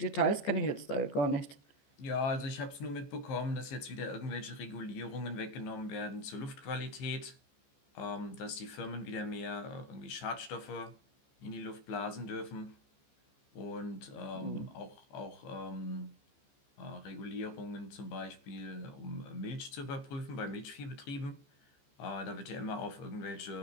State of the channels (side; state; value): right; late; 14 ms